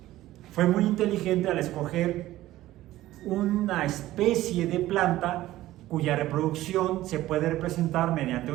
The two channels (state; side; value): quieter; left; 15.5 dB